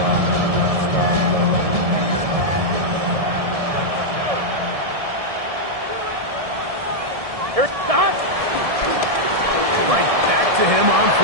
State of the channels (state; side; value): late; left; 1.7 ms